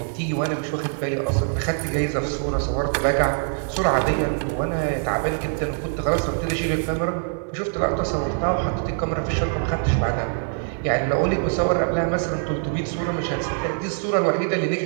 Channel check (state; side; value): silent; left; 61 dB below the other